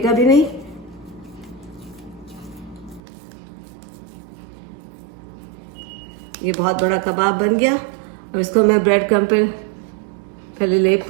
भी नहीं। ये बहुत बड़ा कबाब बन गया। अब इसको मैं ब्रेड क्रम्ब पे पहले लेप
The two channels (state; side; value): drops out; left; at 3.0 s